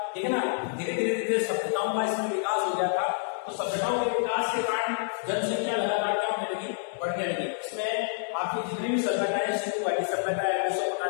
ठीक है ना। धीरे धीरे धीरे सभ्यताओं का इसमें विकास हो गया था। तो सभ्यताओं के विकास के कारण जनसंख्या लगातार क्या होने लगी? बढ़ने लगी। इसमें आपकी जितनी भी सभ्यताएं, सिंधु घाटी सभ्यता है,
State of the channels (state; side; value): silent; right; 59 dB below the other